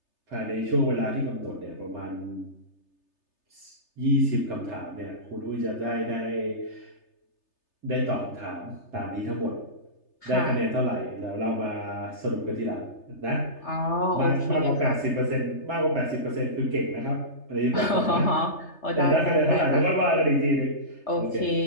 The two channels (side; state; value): right; late; 3.3 ms